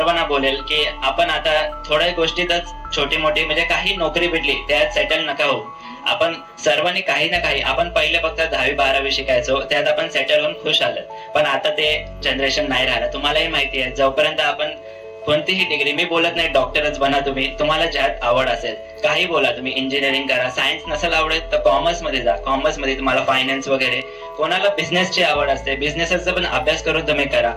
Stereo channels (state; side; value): identical; both; correlation 1.00